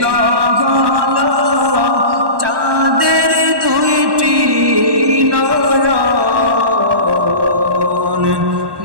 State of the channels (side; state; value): left; late; 1.1 ms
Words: হলো চাঁদের দুইটি নয়ন।